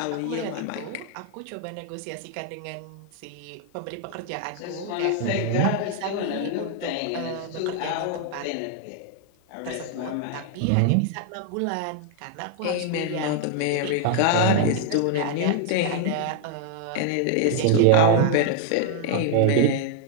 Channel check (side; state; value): both; different; correlation 0.00